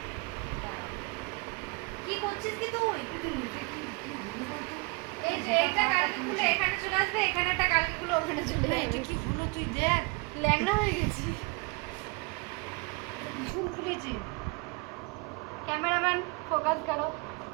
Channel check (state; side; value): quieter; left; 28.2 dB